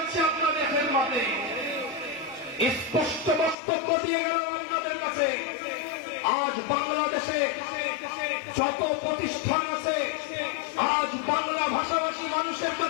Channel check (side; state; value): right; drops out; at 3.6 s